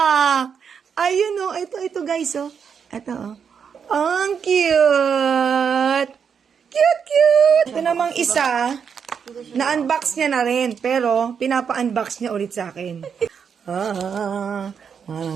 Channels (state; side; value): quieter; left; 6.9 dB